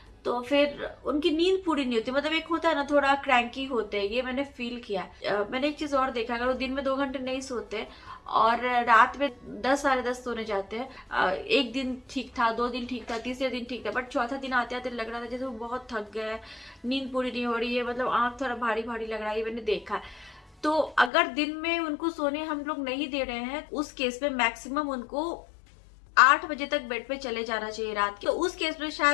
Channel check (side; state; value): right; drops out; at 21.1 s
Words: तो फिर उनकी नींद पूरी नहीं होती। मतलब एक होता है ना, थोड़ा क्रैंकी होते हैं, ये मैंने फील किया। मैंने एक चीज और देखा, अगर वो दिन में 2 घंटे नहीं सोते और रात में 10-10:30 सोने जाते हैं, 1 दिन ठीक था, 2 दिन ठीक था, तीसरे दिन ठीक था, बट चौथा दिन आते आते लग रहा था जैसे वो बहुत थक गए, नींद पूरी नहीं हो रही है, मतलब आंख थोड़ा भारी भारी लग रहा है, ये मैंने देखा है। तो अगर दिन में उनको सोने हम लोग नहीं दे रहे हैं, उस केस में मैक्सिमम उनको 8 बजे तक बेड पे चले जाना चाहिए रात के। तो उस केस में